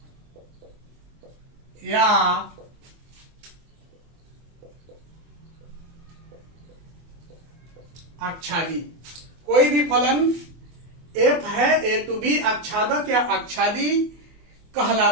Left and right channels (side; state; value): left; late; 24 ms